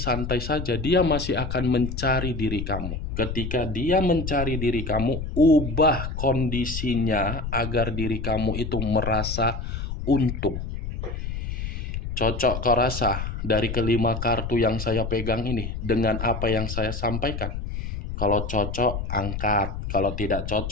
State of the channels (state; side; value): noise; left; rumble, 5 dB below the sound